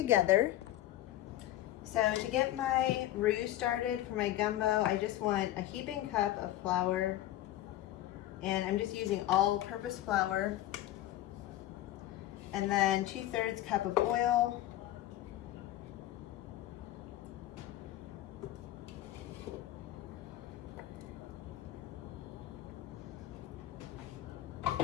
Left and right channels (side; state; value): right; quieter; 14.2 dB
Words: So to get my roux started for my gumbo, I just want a heaping cup of flour, and I'm just using all-purpose flour, and then 2/3 cup of oil,